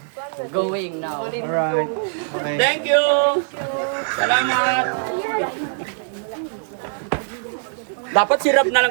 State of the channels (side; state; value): left; silent; digital silence